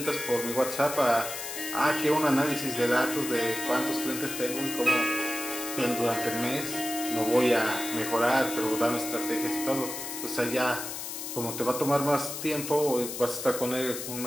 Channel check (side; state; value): left; noise; hiss, 7 dB below the sound